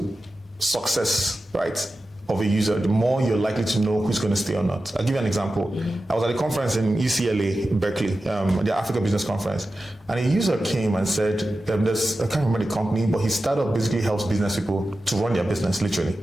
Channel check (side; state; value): both; normal; correlation 0.93